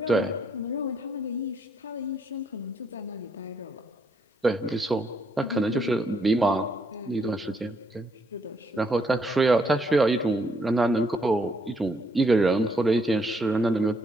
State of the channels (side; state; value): both; normal; correlation 0.73